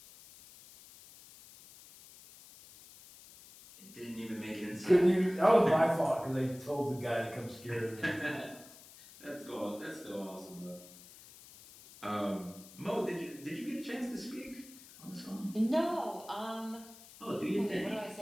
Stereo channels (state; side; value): noise; left; hiss, 20 dB below the sound